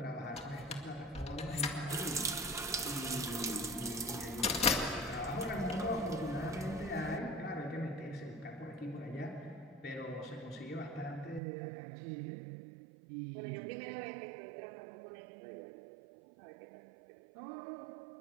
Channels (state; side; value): drops out; left; at 11.4 s